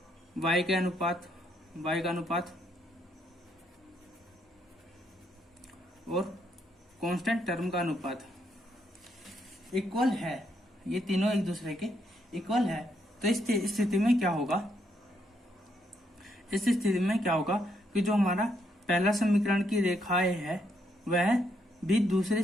y के अनुपात, y का अनुपात और कांस्टेंट टर्म का अनुपात इक्वल है, ये तीनों एक दूसरे के इक्वल है, तो इस स्थिति में क्या होगा, इस स्थिति में क्या होगा कि जो हमारा पहला समीकरण की रेखाएं है वह भी दूसरे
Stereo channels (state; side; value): normal; both; correlation 0.75